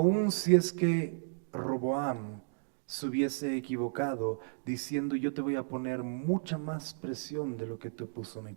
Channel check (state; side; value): silent; left; digital silence